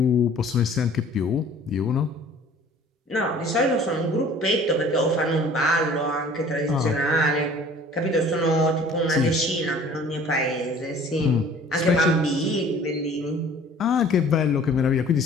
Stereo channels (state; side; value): normal; both; correlation 0.50